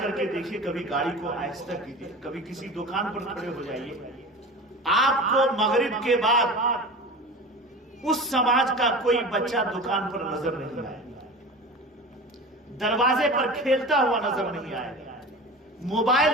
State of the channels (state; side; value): normal; both; correlation 0.34